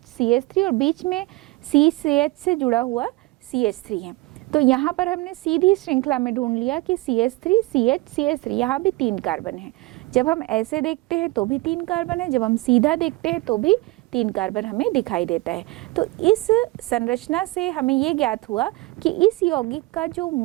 CH3 और बीच में CH से जुड़ा हुआ CH3 है। तो यहाँ पर हमने सीधी श्रृंखला में ढूंढ लिया कि CH3 CH CH3, यहाँ भी 3 कार्बन है। जब हम ऐसे देखते हैं तो भी 3 कार्बन है, जब हम सीधा देखते हैं तो भी 3 कार्बन हमें दिखाई देता है। तो इस संरचना से हमें ये ज्ञात हुआ कि इस यौगिक का जो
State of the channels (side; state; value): left; quieter; 21.3 dB